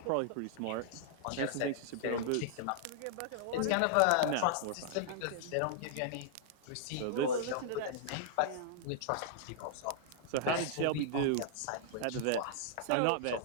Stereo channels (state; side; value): different; both; correlation -0.01